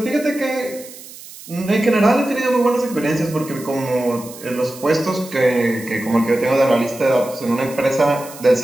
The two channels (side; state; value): right; noise; hiss, 17 dB below the sound